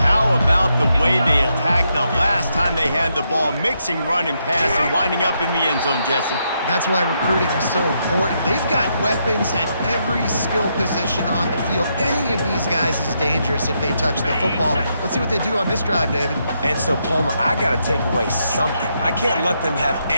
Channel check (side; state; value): both; inverted; correlation -0.79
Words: about the way they attacked the last time they had the ball, mixing run and pass and winding up in the end zone, Jesse? That's why recruiting is so important. They've got weapons at every skill position on the field. Any of these guys is dangerous if they touch the football. Let's see what they do on this drive, David. And so, Palmer, I got to take away something. I can't let them have